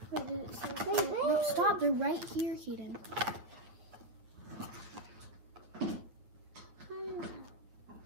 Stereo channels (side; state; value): left; late; 8.8 ms